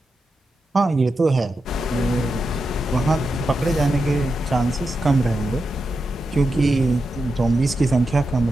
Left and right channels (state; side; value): normal; both; correlation 0.88